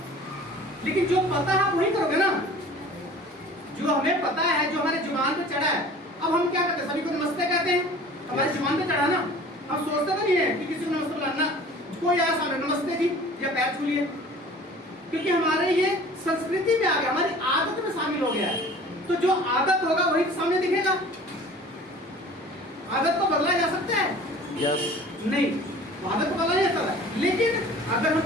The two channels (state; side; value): normal; both; correlation 0.45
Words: लेकिन जो पता है आप वही करोगे ना, जो हमें पता है, जो हमारे जुबान पे चढ़ा है। अब हम क्या करते हैं, सभी को नमस्ते कहते हैं, हमारे जुबान पे चढ़ा ना। हम सोचते तो नहीं है कि किसी को नमस्ते बुलाना, कोई आया सामने नमस्ते जी या पैर छू लिए, क्योंकि हमारे ये संस्कृति में आ गया, हमारी आदत में शामिल हो गया है। तो जो आदत होगा वही सामने दिखेगा। आदत को बदला जा सकता है? यस। नहीं, आदत को बदला नहीं जा सकता, लेकिन अगर हम